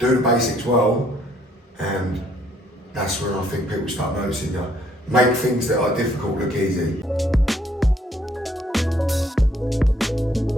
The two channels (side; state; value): both; normal; correlation 0.66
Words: the basics well, and that's when I think people start noticing you. Make things that are difficult look easy.